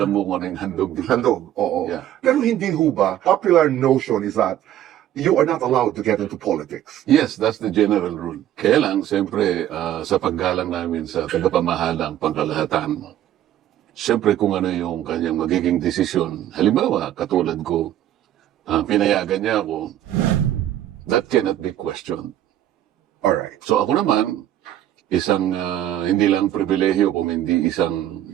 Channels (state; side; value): quieter; left; 12.1 dB